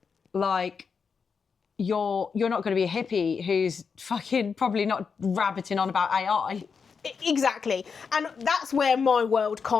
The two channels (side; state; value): right; quieter; 5.8 dB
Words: Like, you're not going to be a hippie who's fucking probably not rabbiting on about AI. Exactly. And that's where my world